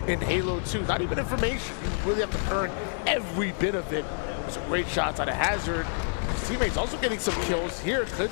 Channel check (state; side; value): silent; right; digital silence